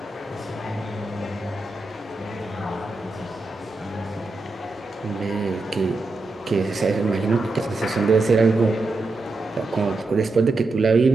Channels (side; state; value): left; quieter; 3.3 dB